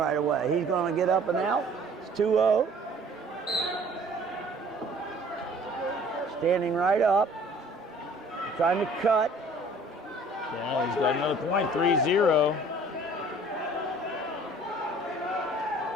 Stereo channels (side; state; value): both; normal; correlation 0.52